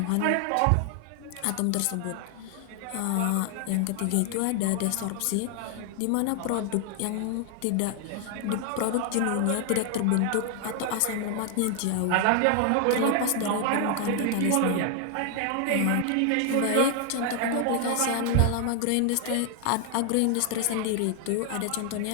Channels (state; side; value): different; both; correlation 0.00